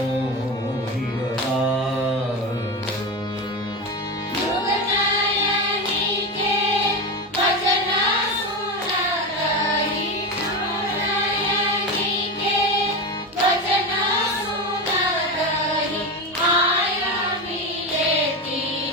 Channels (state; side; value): normal; both; correlation 0.19